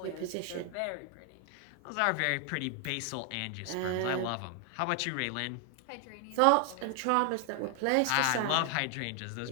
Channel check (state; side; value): different; both; correlation 0.00